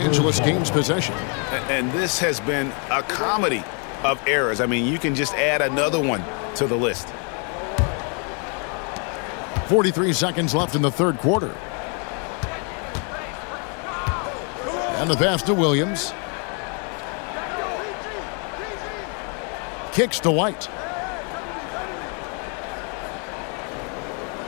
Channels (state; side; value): quieter; right; 38.4 dB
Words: gains possession. And this has been a comedy of errors. I mean, you can just add another one to the list. 43 seconds left in the third quarter. And the pass to Williams. Kicks to White.